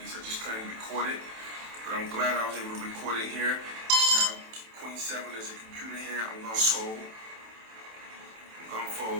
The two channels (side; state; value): left; late; 27 ms